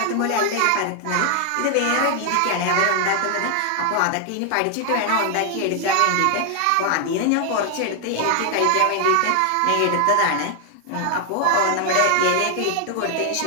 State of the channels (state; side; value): different; both; correlation 0.00